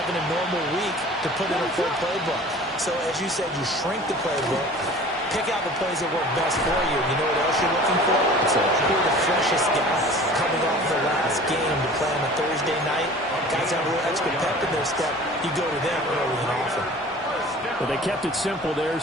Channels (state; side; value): normal; both; correlation 0.44